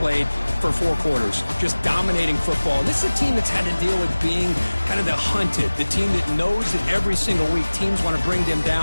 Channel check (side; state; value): both; inverted; correlation -1.00